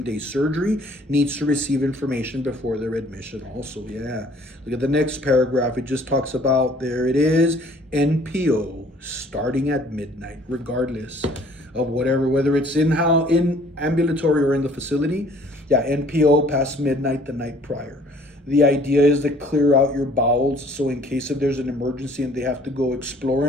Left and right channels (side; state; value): both; normal; correlation 0.56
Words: surgery needs to receive information before their admission also. Yeah. Look at the next paragraph. It just talks about, there it is, NPO starting at midnight, regardless of whether it's in ambulatory or in the facility. Yeah, NPO past midnight the night prior. The idea is to clear out your bowels, so in case if there's an emergency and they have to go explore